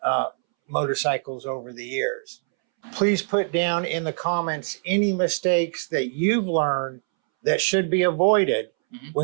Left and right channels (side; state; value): left; silent; 63 dB below the other